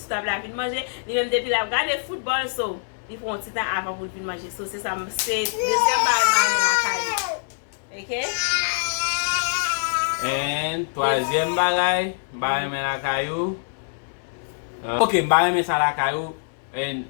table la fin manger, li même depuis la regarder football so il faut un petit temps avant pour fin manger. So c'est ça c'est deuxième bail me la ka. OK? Et troisième bagay, me la kayou. Ok, me ça la kayou. Et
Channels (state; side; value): silent; right; 60 dB below the other